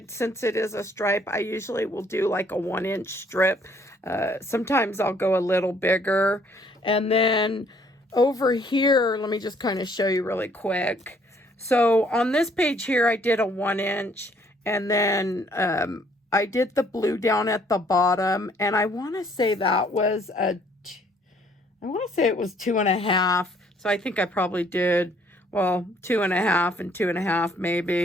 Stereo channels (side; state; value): both; normal; correlation 0.63